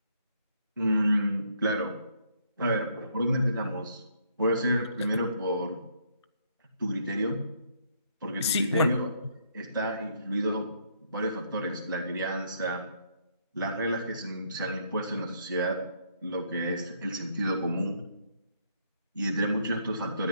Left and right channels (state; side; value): inverted; both; correlation -0.69